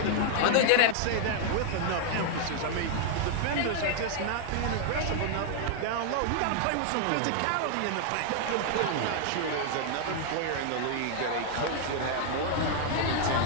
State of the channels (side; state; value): both; different; correlation 0.00